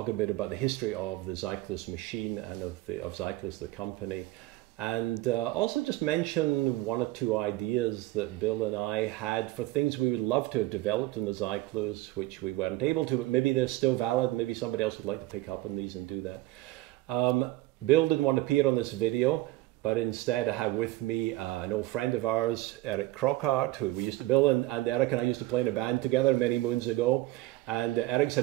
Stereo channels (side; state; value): left; quieter; 18.2 dB